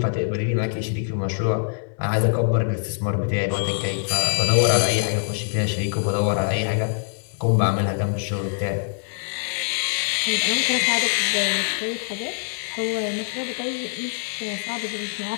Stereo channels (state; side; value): silent; right; 63 dB below the other